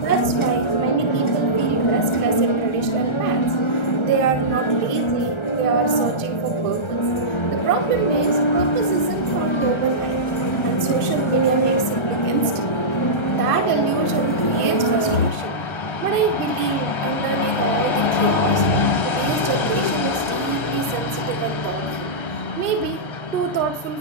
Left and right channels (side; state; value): right; late; 1.4 ms